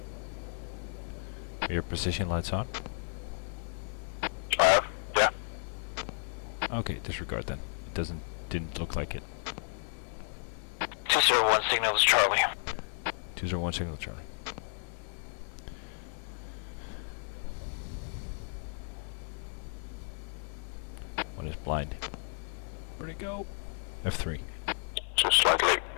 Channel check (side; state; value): right; silent; 56 dB below the other